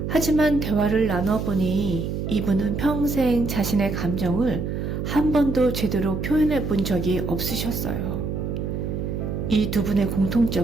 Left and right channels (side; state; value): right; noise; hum, 3 dB below the sound